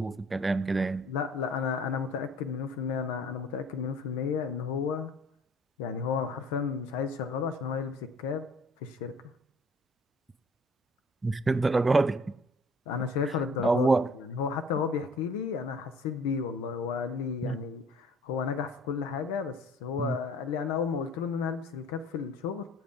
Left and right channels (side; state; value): both; normal; correlation 0.53